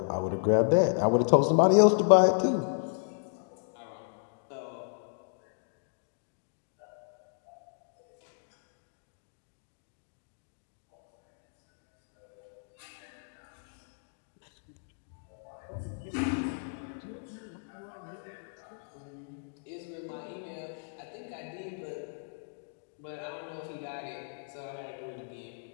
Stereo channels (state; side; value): silent; right; digital silence